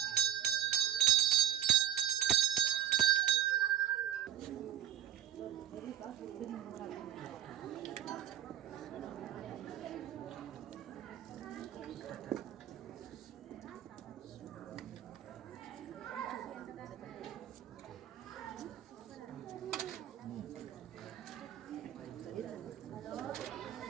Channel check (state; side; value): quieter; left; 11.6 dB